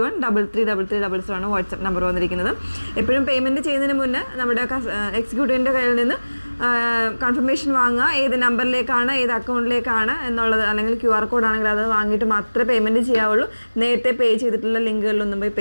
ആണ് വാട്സപ്പ് നമ്പർ വന്നിരിക്കുന്നത്. എപ്പോഴും പേയ്മെൻറ്റ് ചെയ്യുന്നതിന് മുന്നേ നമ്മുടെ എക്സിക്യൂട്ടീവിൻ്റെ കയ്യിൽ നിന്ന് കൺഫർമേഷൻ വാങ്ങുക, ഏത് നമ്പറിലേക്കാണ് ഏത് അക്കൗണ്ടിലേക്കാണ് എന്നുള്ളത്, അല്ലെങ്കിൽ QR കോഡ് ആണെങ്കിൽ അത് വാങ്ങിയിട്ട് മാത്രമേ പേയ്മെൻറ്റ് ചെയ്യാവുള്ളൂ. നേരത്തെ പേ ചെയ്തിട്ടുള്ള ലിങ്കുകളിലൊന്നും പോയി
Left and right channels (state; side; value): inverted; both; correlation -1.00